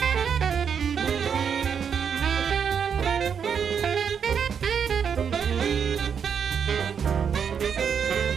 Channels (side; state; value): left; quieter; 7.2 dB